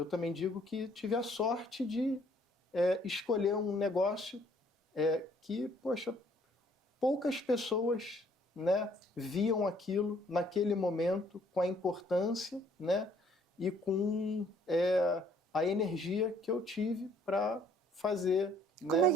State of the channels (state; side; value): normal; both; correlation 0.62